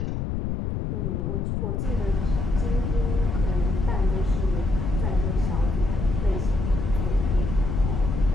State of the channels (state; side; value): noise; left; rumble, 1 dB below the sound